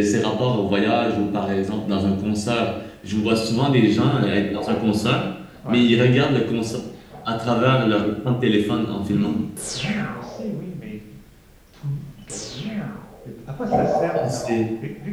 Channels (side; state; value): both; identical; correlation 1.00